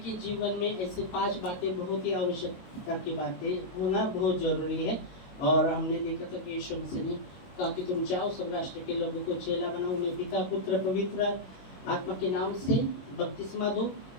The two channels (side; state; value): right; late; 22 ms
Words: जीवन में ऐसे 5 बातें बहुत ही आवश्यकता की बातें होना बहुत जरूरी है। और हमने देखा था कि यीशु मसीह ने कहा कि तुम जाओ सब राष्ट्र के लोगों को चेला बनाओ, उन्हें पिता पुत्र पवित्र आत्मा के नाम से बपतिस्मा दो,